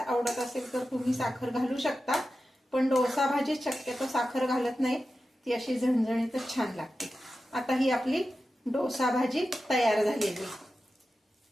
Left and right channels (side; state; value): both; normal; correlation 0.92